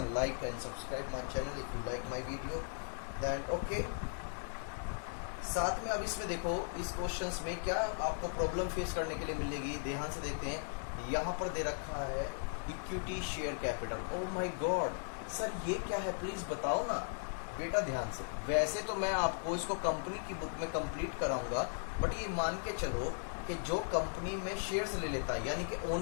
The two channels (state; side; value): silent; right; digital silence